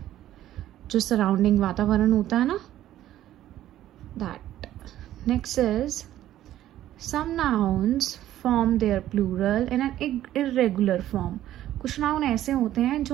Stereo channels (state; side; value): quieter; left; 13.0 dB